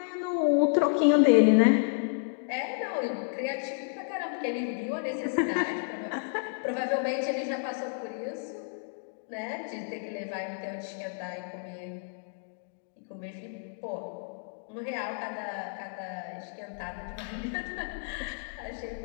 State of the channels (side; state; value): right; silent; digital silence